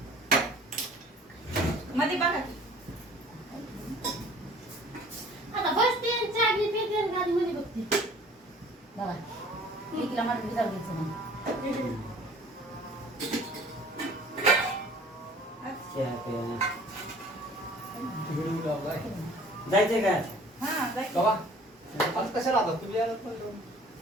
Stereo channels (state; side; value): normal; both; correlation 0.50